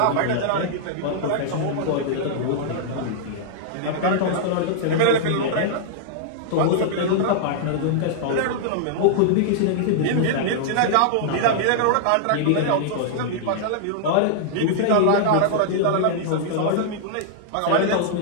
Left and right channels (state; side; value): different; both; correlation -0.01